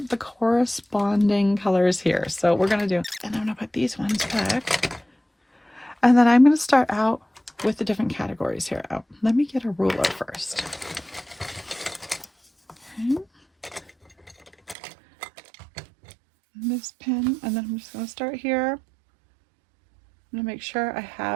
the corresponding colors here. So we're going to do, and I'm going to put these ones back. And then I'm going to start out with the different categories here. Oh, let me get a ruler first. Okay. This pen, and then I'm just going to start here. I'm going to make sure I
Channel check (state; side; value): drops out; left; at 14.8 s